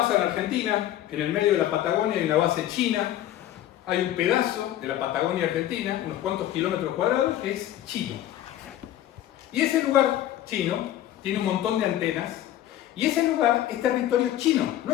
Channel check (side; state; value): right; quieter; 12.7 dB